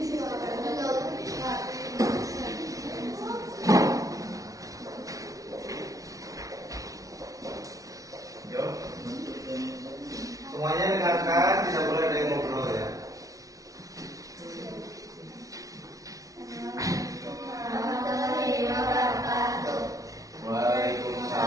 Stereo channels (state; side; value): late; left; 0.17 ms